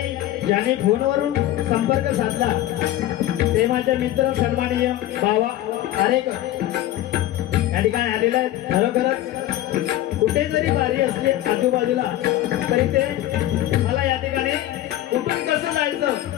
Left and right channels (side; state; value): right; quieter; 14.0 dB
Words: ज्यांनी फोनवरून संपर्क साधला ते माझे मित्र सन्माननीय बावा आरेकर या ठिकाणी आलेले आहेत. खरोखरच कुठे जरी बारी असली आजूबाजूला तरी ते मला या ठिकाणी कुठून कसं जायचं